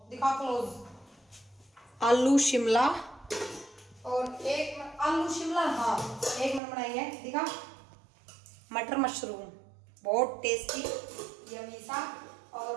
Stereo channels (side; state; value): left; drops out; at 6.6 s